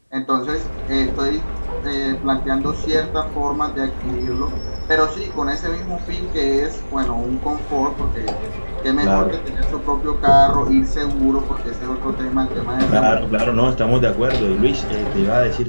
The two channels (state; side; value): inverted; both; correlation -1.00